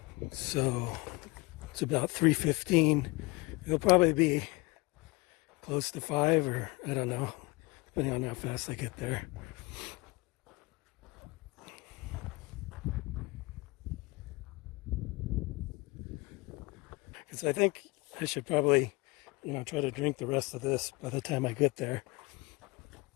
so it's about 3:15. It'll probably be close to 5, or I don't know, depending on how fast I get there. Because I think I should probably, try to drink the rest of this by the time I get there.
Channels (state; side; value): quieter; right; 24.9 dB